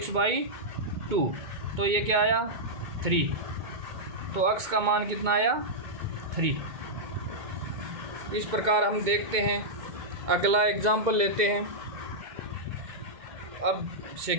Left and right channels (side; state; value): left; late; 2.2 ms